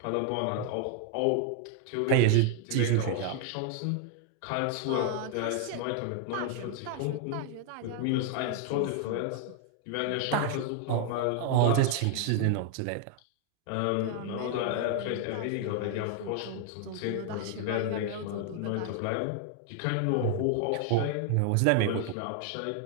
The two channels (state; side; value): different; both; correlation 0.00